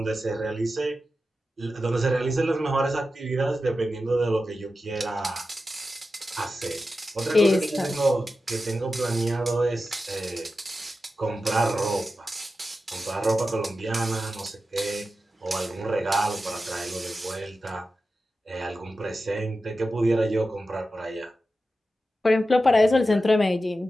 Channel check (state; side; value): normal; both; correlation 0.92